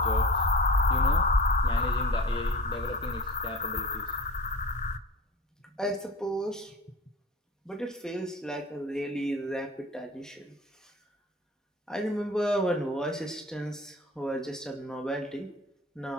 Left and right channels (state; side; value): normal; both; correlation 0.39